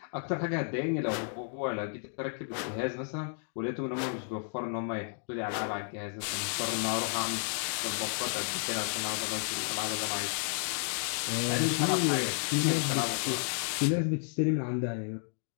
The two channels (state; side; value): silent; right; 56 dB below the other